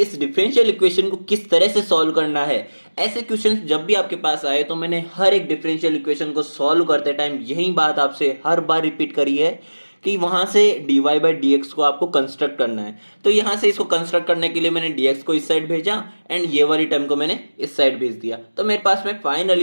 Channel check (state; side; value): inverted; both; correlation -1.00